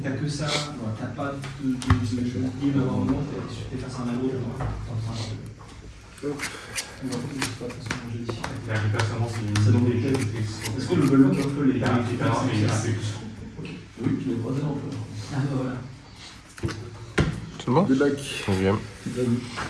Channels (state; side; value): identical; both; correlation 1.00